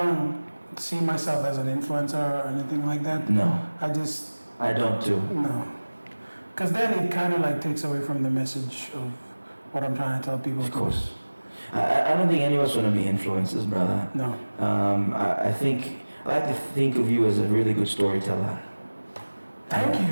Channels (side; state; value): both; inverted; correlation -1.00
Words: see myself as an influencer or anything like that. No, I don't too. No. Because then it kind of like takes away from the message of what I'm trying to tell people. Of course. I don't think any of us want to be influencers, brother. No. I like to think of you as a really good storyteller. Thank